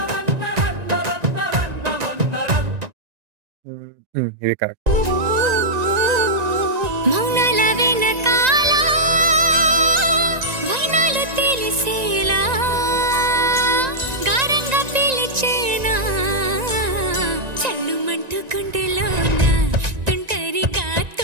ఇది కరెక్ట్. మౌనాల వెనకాల వైనాలు తెలిసేలా గారంగా పిలిచేనా చల్లుమంటూ గుండెలోన తుంటరిగా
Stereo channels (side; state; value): left; late; 1.9 ms